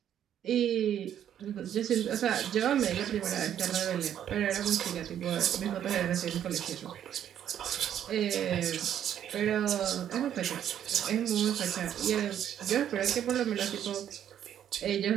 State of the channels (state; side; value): quieter; left; 10.0 dB